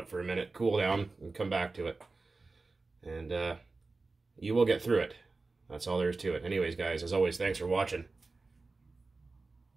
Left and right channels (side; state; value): left; quieter; 3.7 dB